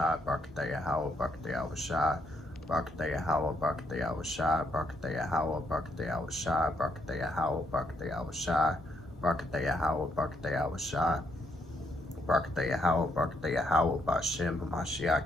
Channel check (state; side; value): normal; both; correlation 0.74